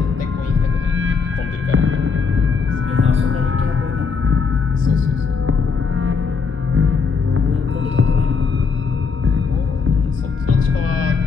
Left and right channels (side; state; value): right; quieter; 5.2 dB